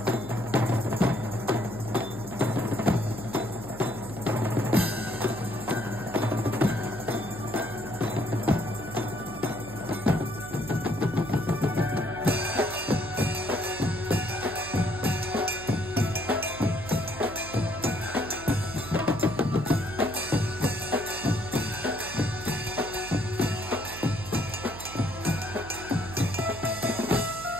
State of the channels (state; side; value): noise; right; hum, 13 dB below the sound